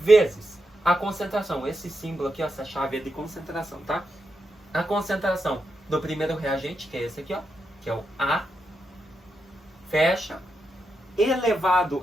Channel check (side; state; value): both; normal; correlation 0.85